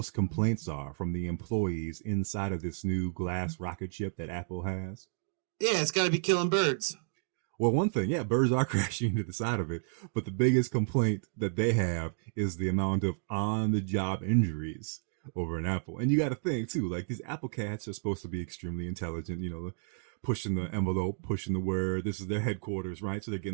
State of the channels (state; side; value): silent; left; digital silence